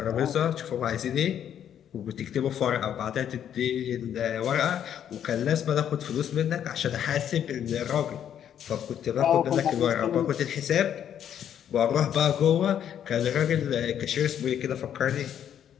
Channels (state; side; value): quieter; right; 9.6 dB